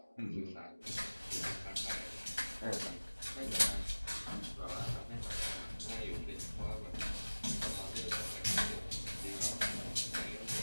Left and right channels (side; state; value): both; inverted; correlation -1.00